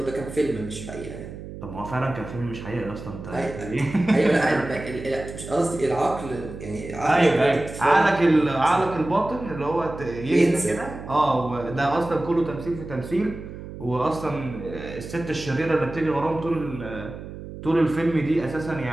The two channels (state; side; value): noise; right; hum, 11 dB below the sound